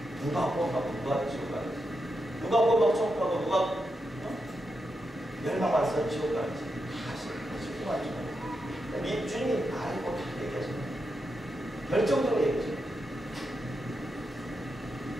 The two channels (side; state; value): both; normal; correlation 0.86